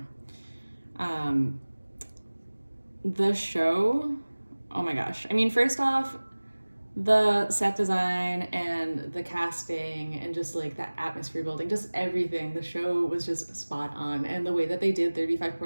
The show, oh my gosh. I mean, first off, the set design and the casting and just like that atmosphere building, just everything. The show was just spot on. And the way that they did 35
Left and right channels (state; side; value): inverted; both; correlation -1.00